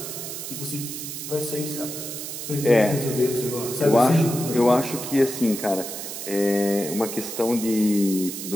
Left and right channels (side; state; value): right; noise; hiss, 7 dB below the sound